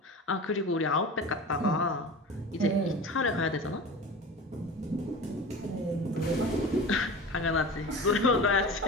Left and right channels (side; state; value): both; normal; correlation 0.33